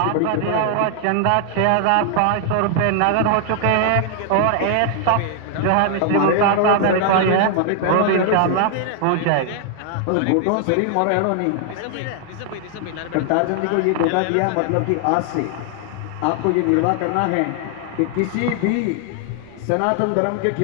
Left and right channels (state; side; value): different; both; correlation 0.00